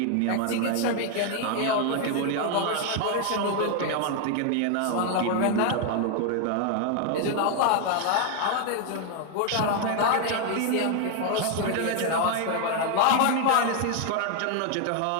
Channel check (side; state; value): both; different; correlation 0.00